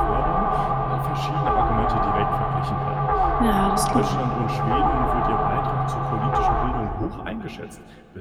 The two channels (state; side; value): identical; both; correlation 1.00